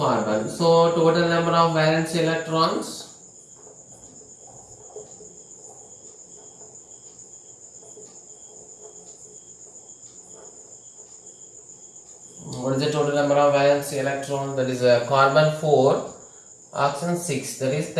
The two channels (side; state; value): both; identical; correlation 1.00